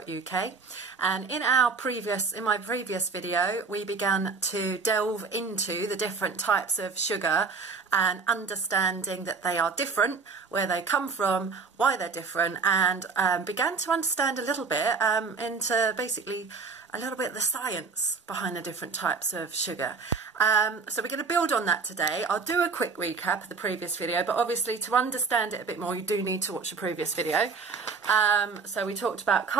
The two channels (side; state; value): left; quieter; 4.9 dB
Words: And in my previous video, we began to delve into the different types of sugar and understanding that they are different, where they come from, why they're different, and began to understand a little bit into basically a little bit of the science behind the different types of sugar. So we're going to build on that today. I'll do a quick recap of the previous video, but obviously to understand it a bit more, you do need to watch the previous video. So we talked about